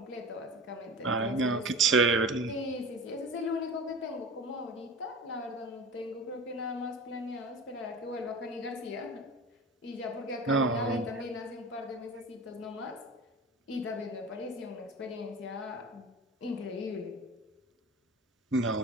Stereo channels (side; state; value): both; normal; correlation 0.34